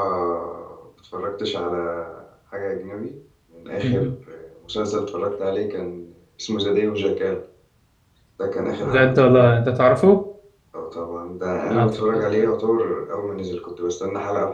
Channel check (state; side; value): identical; both; correlation 1.00